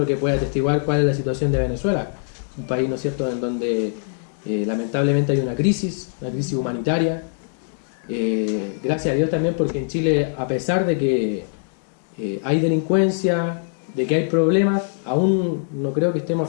que puede atestiguar cuál es la situación de Venezuela, un país, ¿no es cierto?, en donde lamentablemente hay una crisis humanitaria. Gracias a Dios también, porque en Chile, a pesar de que hay delincuencia, de que hay problemas, aún no creo que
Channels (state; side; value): silent; right; digital silence